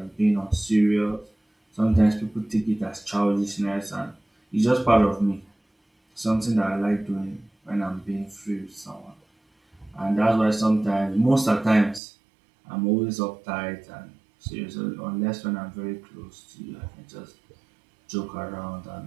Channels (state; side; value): drops out; left; at 12.0 s